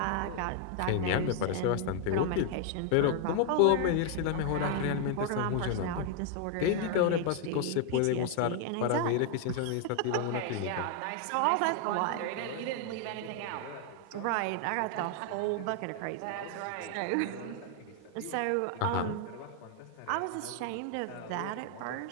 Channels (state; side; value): different; both; correlation 0.00